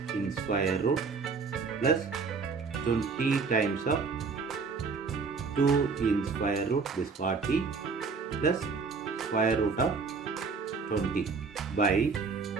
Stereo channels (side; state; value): left; quieter; 4.8 dB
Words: in square root plus 20 times of 2 in square root, this 40 plus square root of 20 by